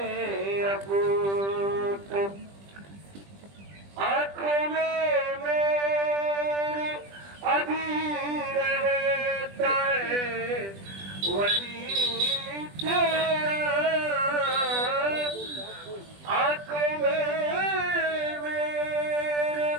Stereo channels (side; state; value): left; late; 20 ms